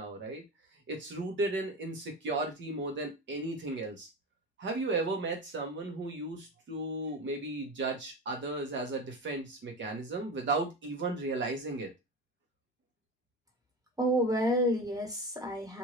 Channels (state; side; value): normal; both; correlation 0.26